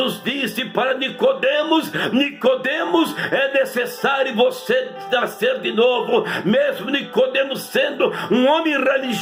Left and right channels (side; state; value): both; identical; correlation 1.00